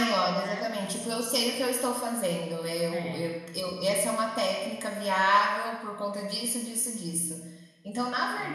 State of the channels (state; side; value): identical; both; correlation 1.00